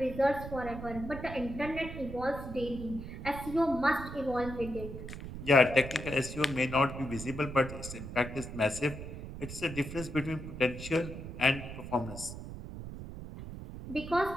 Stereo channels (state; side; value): noise; right; rumble, 9 dB below the sound